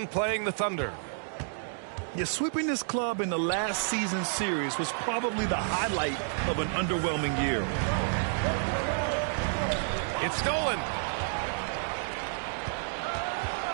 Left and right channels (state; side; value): silent; left; digital silence